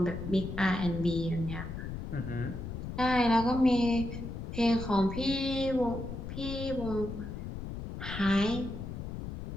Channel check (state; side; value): noise; left; rumble, 7 dB below the sound